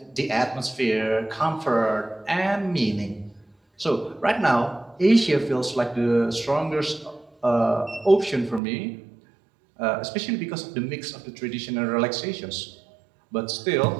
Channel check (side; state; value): left; drops out; at 8.6 s